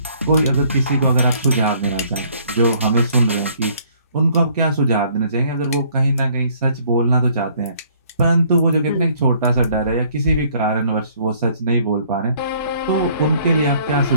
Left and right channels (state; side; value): inverted; both; correlation -0.61